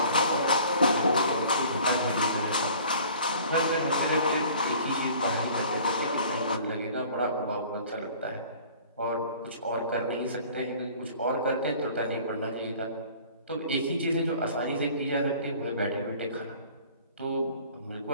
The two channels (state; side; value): inverted; both; correlation -0.49